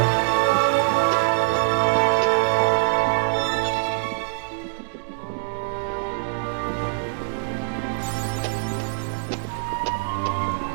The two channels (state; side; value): silent; left; digital silence